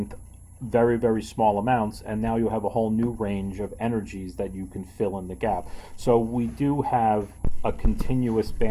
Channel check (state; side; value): identical; both; correlation 1.00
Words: very, very small amounts, and now you have a whole new range of energies that you can fill in the gap. So we do have a continuous